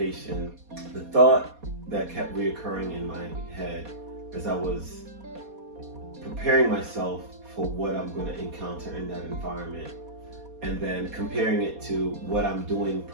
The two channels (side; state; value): left; late; 4.2 ms